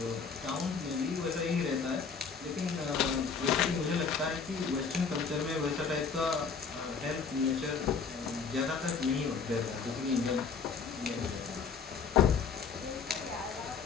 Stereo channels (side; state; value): right; quieter; 5.7 dB